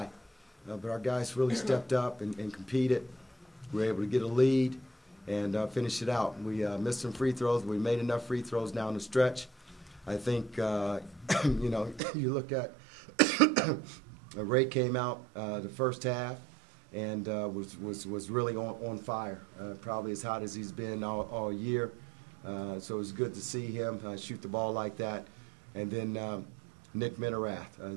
But our guys really stepped up and competed. We were able to get a lead and finish it out. We missed some free throws. We made enough free throws down the stretch. I think, you know, you look at Ray came out the first half and was really on fire, probably as hot as he's been all year. So it was good to see him shoot the ball like that. And then Nick Minerath.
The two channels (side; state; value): left; drops out; at 12.0 s